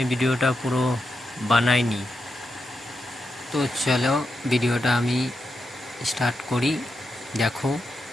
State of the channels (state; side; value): normal; both; correlation 0.86